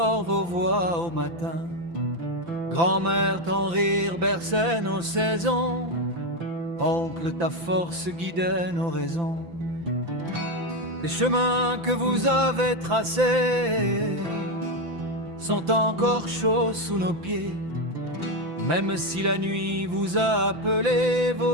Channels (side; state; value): left; late; 5.9 ms